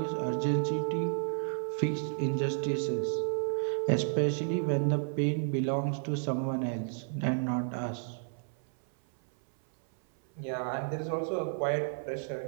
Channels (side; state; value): left; silent; 57 dB below the other